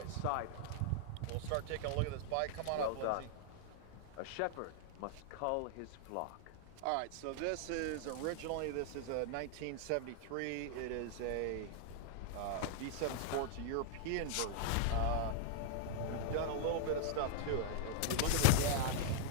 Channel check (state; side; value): different; both; correlation -0.01